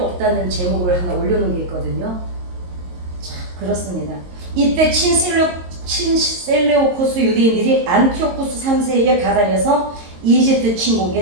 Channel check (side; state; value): left; late; 22 ms